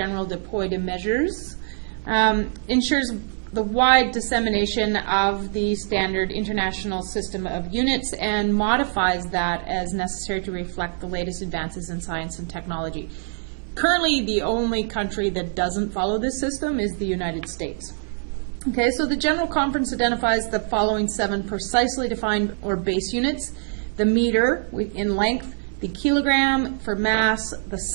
de Poids de Mesures, ensures the wide dissemination of the standard international system of units and modifies that as necessary to reflect the latest advances in science and technology. Currently, the only country that doesn't follow this system is the United States. Okay, so the General Conference identifies the following 7 precisely defined or base units: the meter in length, the kilogram for mass, the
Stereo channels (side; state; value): left; silent; 63 dB below the other